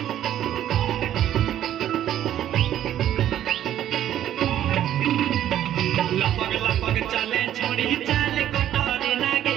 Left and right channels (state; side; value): quieter; left; 11.5 dB